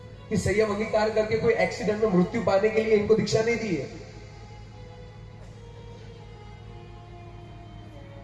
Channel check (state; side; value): identical; both; correlation 1.00